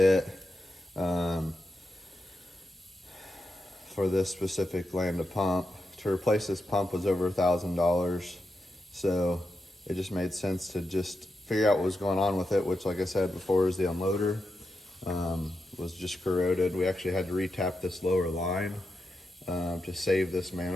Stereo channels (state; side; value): normal; both; correlation 0.87